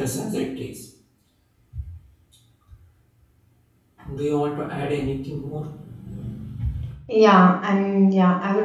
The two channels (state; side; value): identical; both; correlation 1.00